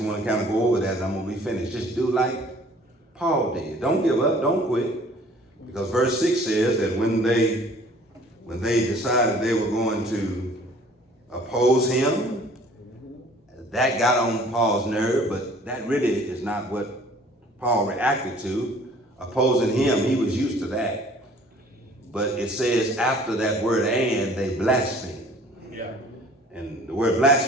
want to kind of go over that, and I'm going to be finished. Just do like Paul did. Don't give up. Don't quit. Because verse 6 says that when they decided they were going to oppose him, that got on Paul's nerve, but that really is not what Paul reacted to. Opposing him, he was used to that. But it says after that word "and," they blasphemed. And the word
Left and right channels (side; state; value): both; normal; correlation 0.53